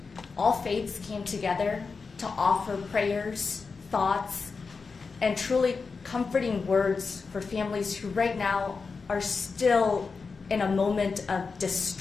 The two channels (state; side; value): quieter; right; 4.7 dB